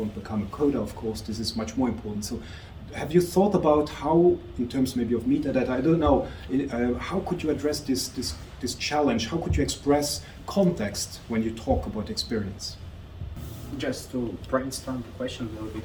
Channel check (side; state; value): both; identical; correlation 1.00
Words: become a coder, of course, this is much more important. So have you thought about how, in terms maybe of metadata, I don't know, how could you address this challenge? How could you express context when you talk about experience? Just to brainstorm the question a little